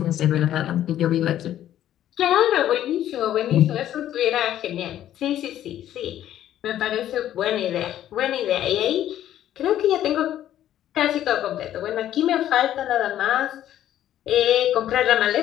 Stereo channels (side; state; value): right; quieter; 11.9 dB